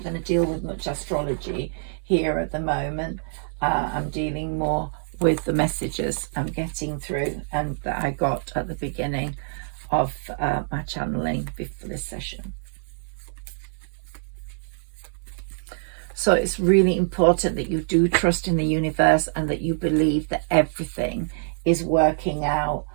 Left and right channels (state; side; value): silent; left; 62 dB below the other